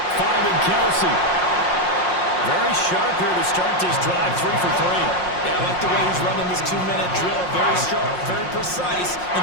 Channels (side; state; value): right; late; 5.6 ms